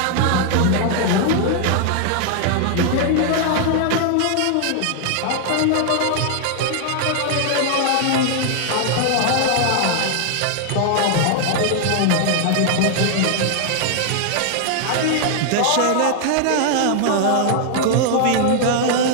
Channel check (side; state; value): both; different; correlation 0.00